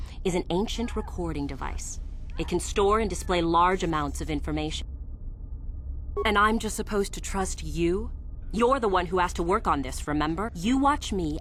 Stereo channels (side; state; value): both; identical; correlation 1.00